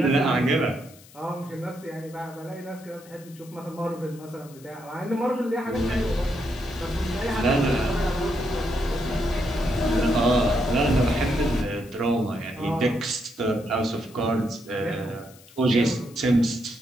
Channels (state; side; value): noise; left; hiss, 23 dB below the sound